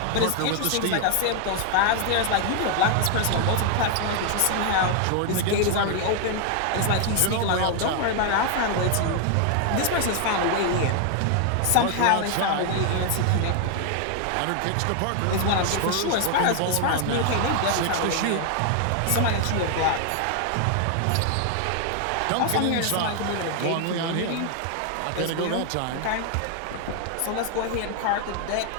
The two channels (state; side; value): different; both; correlation 0.00